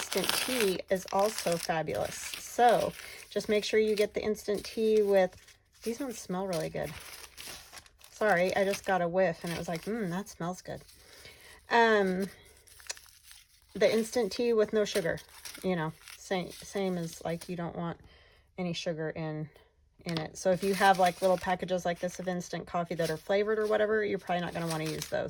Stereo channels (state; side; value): identical; both; correlation 1.00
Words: tea is also fabulous. So just make sure you get the instant tea with, these ones smell really good. Sorry, I just got a whiff and it was like, that smells good. The instant tea with no sugar, you know, same as like you don't want any sugar in it. So if you have like little packages like this of instant coffee that are flavored or whatever, you're probably not going to want to use